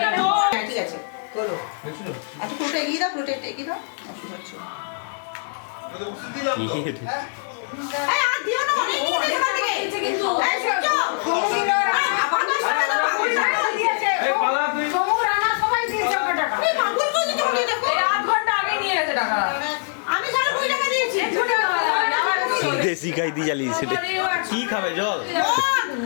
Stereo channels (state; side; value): silent; right; 63 dB below the other